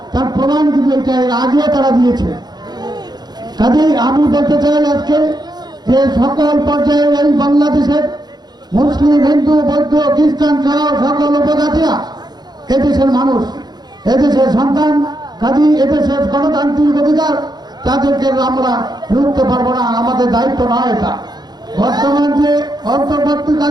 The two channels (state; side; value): late; left; 0.20 ms